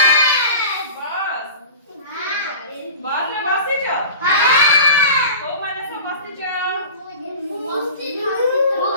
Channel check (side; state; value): both; inverted; correlation -0.37